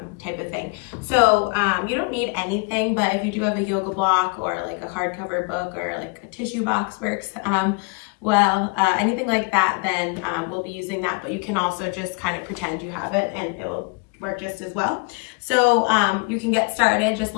type of thing. So you don't need anything, but if you do have a yoga block or like a hardcover book or like a tissue box works, anything like that, then we'll be using that, but you can also just kind of pretend you have it and it will work just as well. So you can get started just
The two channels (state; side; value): quieter; right; 31.4 dB